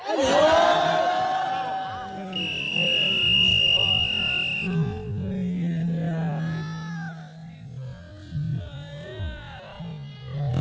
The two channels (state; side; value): identical; both; correlation 1.00